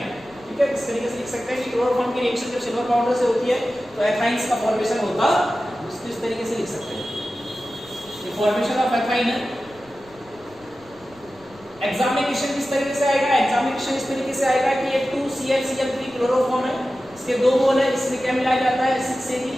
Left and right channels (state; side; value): noise; left; rumble, 26 dB below the sound